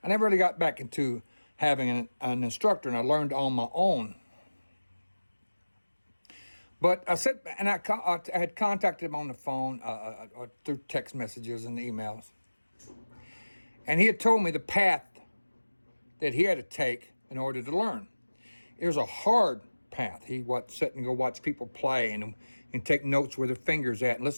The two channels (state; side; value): inverted; both; correlation -1.00